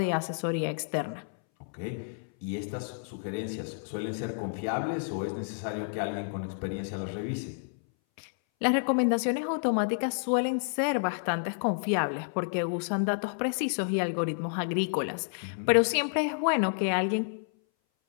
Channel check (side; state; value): right; silent; 58 dB below the other